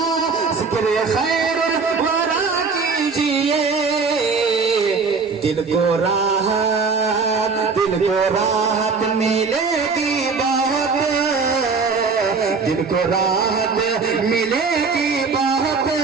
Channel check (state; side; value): quieter; left; 4.8 dB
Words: जिक्र खैरुल वरा कीजिए। दिल को राहत मिलेगी बहुत, दिल को राहत मिलेगी बहुत।